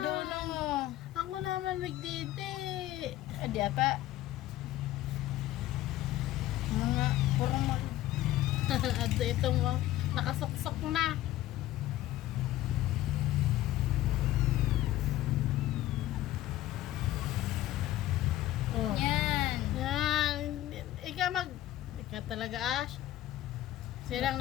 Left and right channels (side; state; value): right; quieter; 14.7 dB